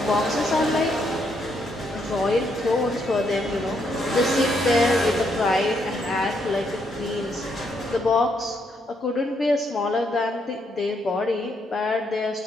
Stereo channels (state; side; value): normal; both; correlation 0.75